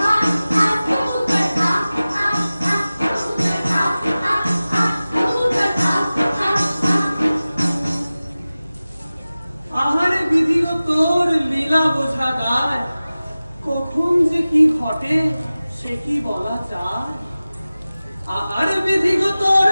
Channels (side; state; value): both; inverted; correlation -0.97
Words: আ আ কবুতর আ আ আ কবুতর আ আ আ কবুতর আ আ আ। আহারে বিধিও তোর লীলা বোঝা দায়, কখন যে কি ঘটে সে কি বলা যায়। আহারে বিধিও তোর